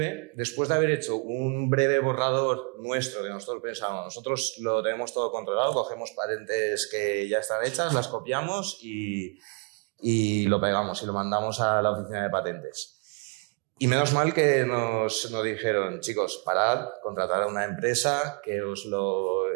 después de haber hecho un breve borrador nuestro que nosotros pensábamos, nosotros lo tenemos todo controlado, cogemos patentes que ya están hechas, las copiamos y lo pegamos y lo mandamos a la oficina de patentes. Y menos mal que nos dijeron, chicos, parad, contratad a una empresa que os lo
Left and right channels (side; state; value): left; quieter; 35.0 dB